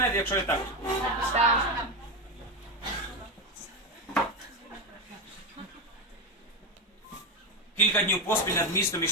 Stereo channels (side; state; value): both; normal; correlation 0.12